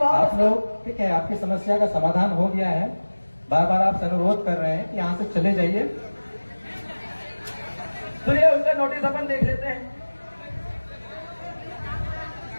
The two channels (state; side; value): inverted; both; correlation -1.00